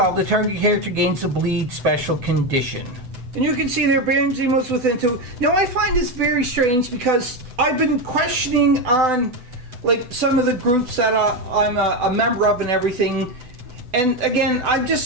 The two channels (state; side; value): late; left; 7.9 ms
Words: the target character gains a bleed special condition. And you can see there, Baron Zemo's within 2. Now, I find this very strange because I've been questioning on, like, some of the groups that I'm a member of and everything. And again, I'm